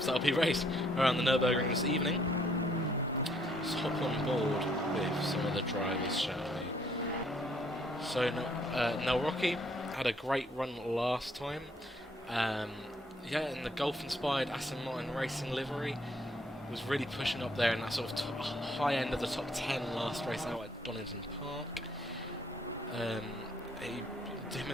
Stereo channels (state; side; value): normal; both; correlation 0.67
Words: that'll be raced around the Nurburgring this evening. Let's hop on board with some of the drivers, shall we? So, Nurburgring had a great run last time. Yeah, in the Golf-inspired Aston Martin Racing livery, was really pushing up there in that sort of high end of the top 10 last race out at Donington Park. Him